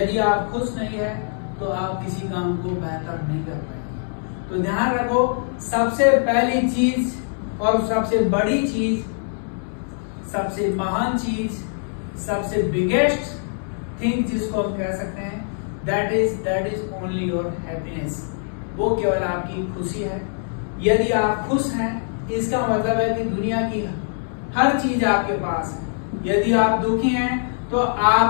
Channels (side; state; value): right; silent; digital silence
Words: आप खुश नहीं है तो आप किसी काम को बेहतर नहीं कर पाएंगे। तो ध्यान रखो, सबसे पहली चीज और सबसे बड़ी चीज, सबसे महान चीज, सबसे बिगेस्ट थिंग जिसको हम कह सकते हैं, that is only your happiness. वो केवल आपकी खुशी है। यदि आप खुश हैं, इसका मतलब है कि दुनिया की हर चीज आपके पास है। यदि आप दुखी हैं तो